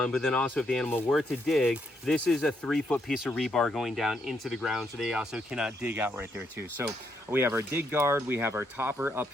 but then also if the animal were to dig, this is a 3-foot piece of rebar going down into the ground, so they also cannot dig out right there too. So we have our dig guard, we have our topper up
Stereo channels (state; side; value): normal; both; correlation 0.76